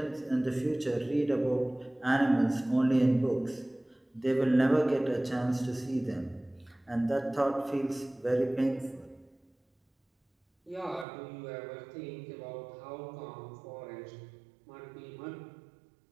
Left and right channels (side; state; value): left; drops out; at 11.1 s